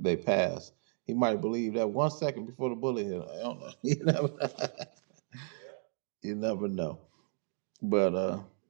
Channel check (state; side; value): silent; left; 55 dB below the other